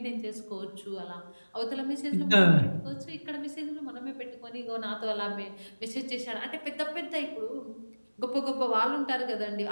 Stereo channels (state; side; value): inverted; both; correlation -1.00